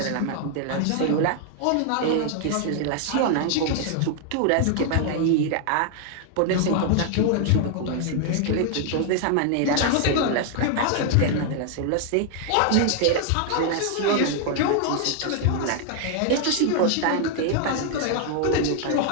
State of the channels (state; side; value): different; both; correlation 0.00